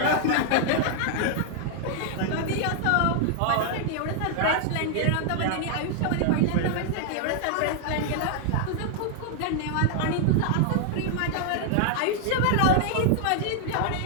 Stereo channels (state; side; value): different; both; correlation 0.00